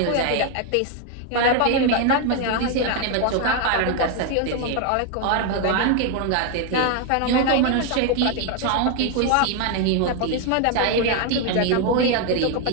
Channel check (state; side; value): different; both; correlation 0.01